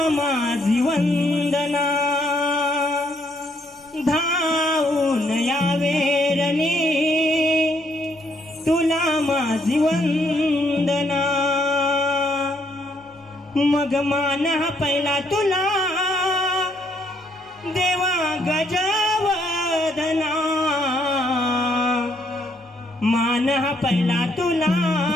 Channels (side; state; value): left; noise; hum, 30 dB below the sound